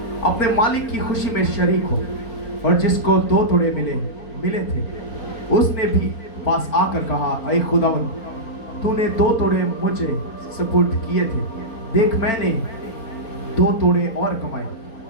अपने मालिक की खुशी में शरीक हो। और जिसको 2 तोड़े मिले थे उसने भी पास आकर कहा, ऐ खुदावंद, तूने 2 तोड़े मुझे सुपुर्द किए थे, देख मैंने 2 तोड़े और कमाए।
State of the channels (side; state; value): right; late; 4.4 ms